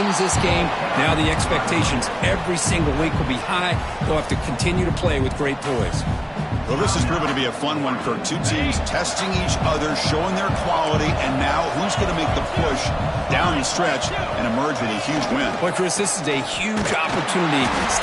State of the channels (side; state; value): both; identical; correlation 1.00